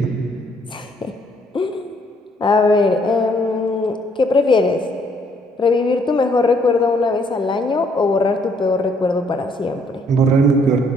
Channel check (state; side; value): normal; both; correlation 0.66